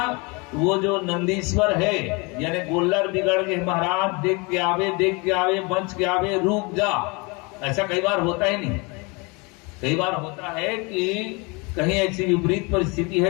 वो जो नंदीश्वर है यानी गोल्लर बिगड़ गए महाराज, देख के आवे, देख के आवे, बच के आवे, रुक जा। ऐसा कई बार होता ही नहीं। कई बार होता है कि कहीं ऐसी विपरीत परिस्थिति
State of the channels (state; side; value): quieter; right; 28.7 dB